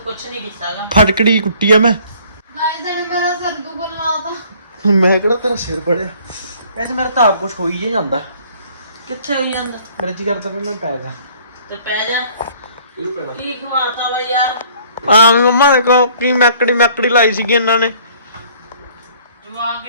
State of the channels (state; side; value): inverted; both; correlation -0.57